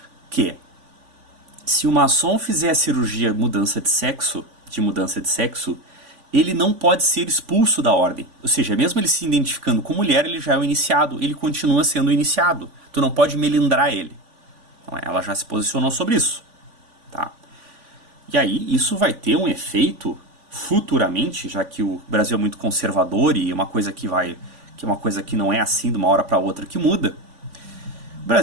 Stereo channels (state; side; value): late; left; 3.5 ms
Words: que se o maçom fizer cirurgia de mudança de sexo, ele não pode ser expulso da ordem. Ou seja, mesmo ele se identificando com mulher, ele já é o iniciado, ele continua sendo o iniciado. Tu não pode melindrar ele. Então, ela já se posicionou sobre isso. Tá? E aí, isso vai ter um efeito futuramente, já que o Brasil é muito conservador e uma coisa que é uma coisa que não é assim de uma hora para outra que muda. O